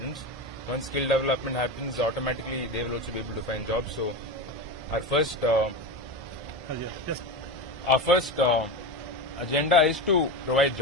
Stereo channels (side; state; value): both; normal; correlation 0.21